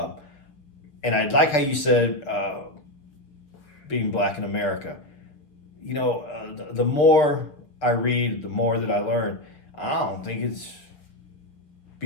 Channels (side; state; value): right; late; 6.6 ms